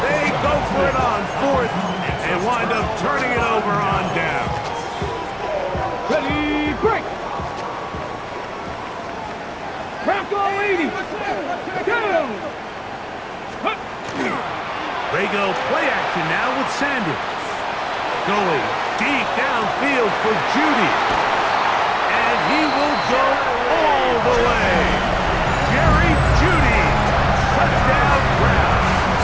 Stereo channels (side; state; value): both; identical; correlation 1.00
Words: They go for it on 4th and wind up turning it over on down. Ready, break! Bronco 80! Go! They go play action now with Sanders. Going deep downfield for Judy. And he will go all the way. Jerry Judy. Touchdown